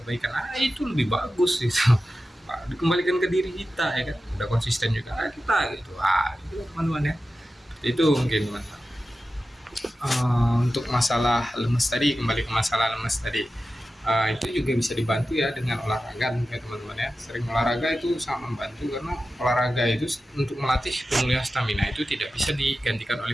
itu lebih bagus gitu. Dikembalikan ke diri kita ya kan, udah konsisten juga kita gitu. Itu teman-teman ya, itu mungkin teman-teman. Untuk masalah lemes tadi, kembali ke masalah lemes tadi, itu juga bisa dibantu ya dengan olahraga ya teman-teman ya. Sering olahraga itu sangat membantu, karena olahraga itu untuk melatih pemulihan stamina itu tidak bisa digantikan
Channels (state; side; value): normal; both; correlation 0.93